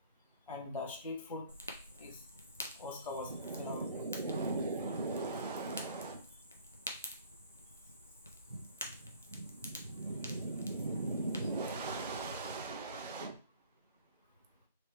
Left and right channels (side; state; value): both; inverted; correlation -0.51